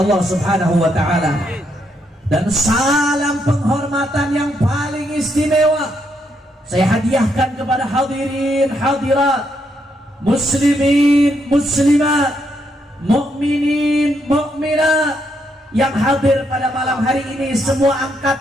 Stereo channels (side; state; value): both; normal; correlation 0.77